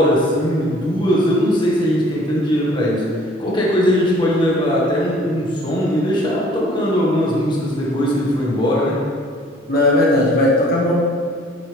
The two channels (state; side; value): normal; both; correlation 0.54